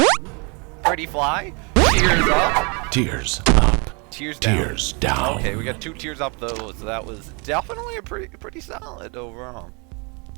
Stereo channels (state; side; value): quieter; left; 31.9 dB